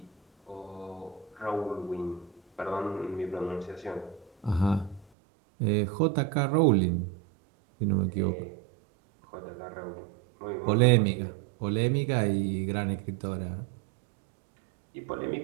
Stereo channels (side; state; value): left; drops out; at 5.1 s